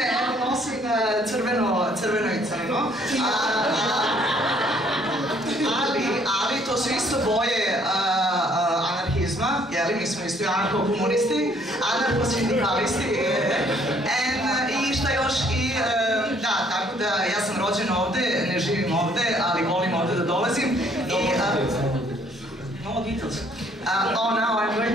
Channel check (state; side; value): normal; both; correlation 0.63